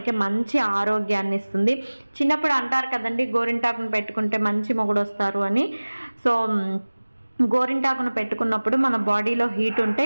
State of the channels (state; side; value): inverted; both; correlation -1.00